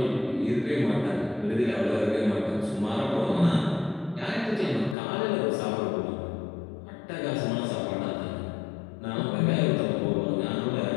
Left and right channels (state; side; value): drops out; right; at 5.0 s